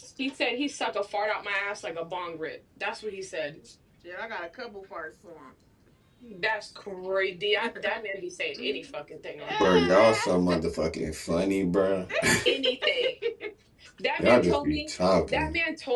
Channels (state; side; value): identical; both; correlation 1.00